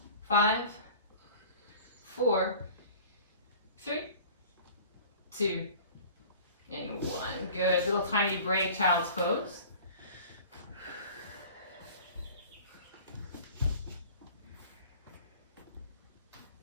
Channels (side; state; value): both; inverted; correlation -0.44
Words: 5, 4, 3, 2, and 1. Good. Little tiny break, child's pose.